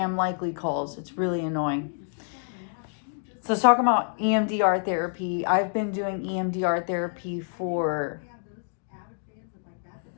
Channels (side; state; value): right; silent; digital silence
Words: likely calls. It's really annoying. So let's talk about EMDR therapy. I've been doing EMDR therapy for